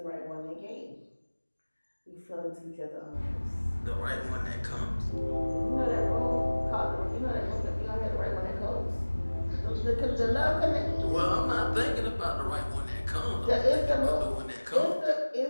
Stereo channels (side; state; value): both; inverted; correlation -1.00